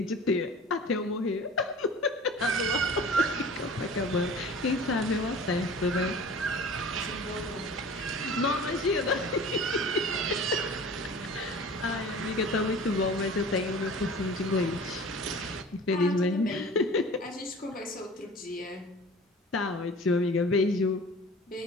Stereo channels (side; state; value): both; normal; correlation 0.41